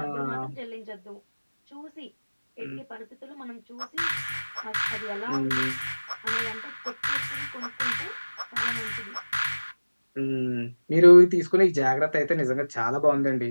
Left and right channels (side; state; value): both; inverted; correlation -1.00